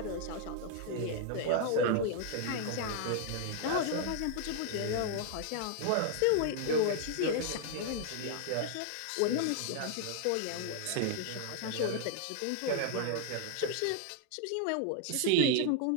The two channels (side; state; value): both; different; correlation 0.00